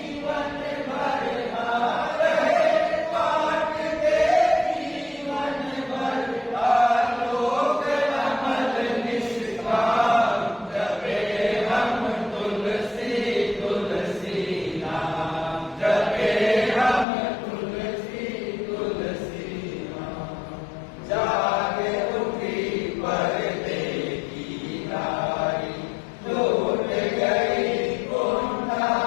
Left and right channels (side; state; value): right; drops out; at 17.1 s